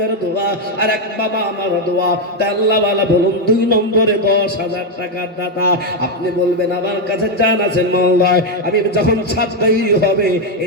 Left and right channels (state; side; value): normal; both; correlation 0.04